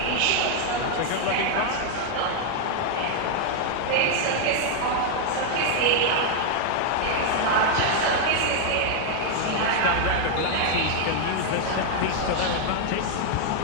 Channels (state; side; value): different; both; correlation 0.00